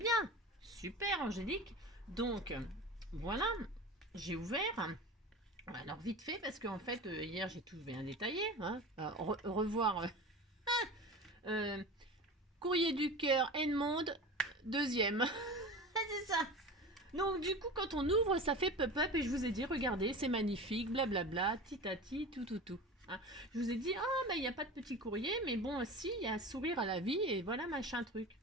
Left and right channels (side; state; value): both; normal; correlation 0.32